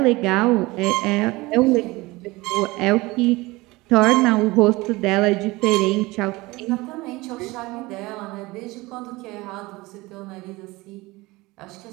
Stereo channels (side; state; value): left; quieter; 21.6 dB